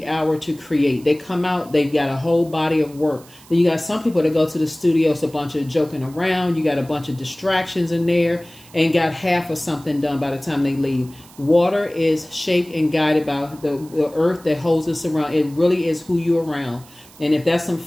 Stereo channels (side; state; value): right; noise; hiss, 24 dB below the sound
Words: hour to create. They come out. They've got a whole body of work. Then you got some people that go to the studio. It's a bunch of joking around. You got a bunch of distractions in there and got half of something done by the time they leave. Water is shaped and guided by the earth that holds us around. It really is who you're around. And if that's some